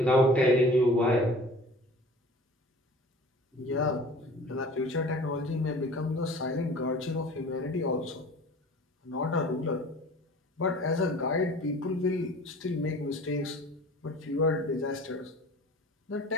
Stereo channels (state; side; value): normal; both; correlation 0.44